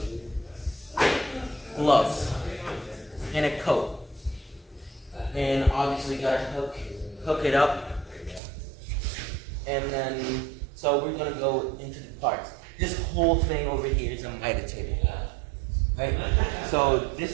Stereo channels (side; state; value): left; drops out; at 8.4 s